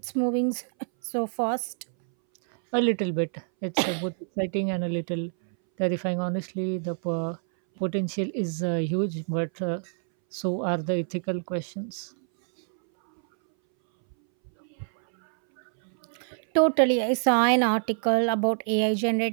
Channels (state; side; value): silent; left; 61 dB below the other